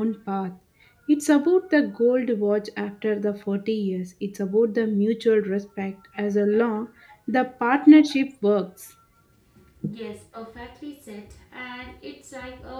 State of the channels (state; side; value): identical; both; correlation 1.00